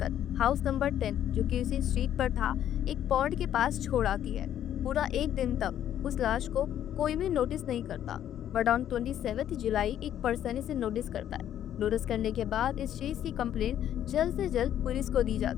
हाउस नंबर 10 जो कि उसी स्ट्रीट पर था एक पॉन्ड के पास छोड़ आती है। पूरा एक दिन तक उस लाश को कोई भी नोटिस नहीं करता, बट ऑन 27 जुलाई एक पर्सन इसे नोटिस करता है। नोटिस करने के बाद इस चीज की कंप्लेंट जल्द से जल्द पुलिस को दी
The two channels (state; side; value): quieter; right; 10.8 dB